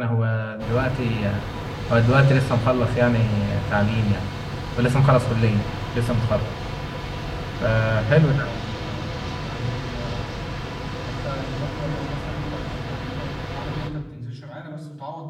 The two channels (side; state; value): both; identical; correlation 1.00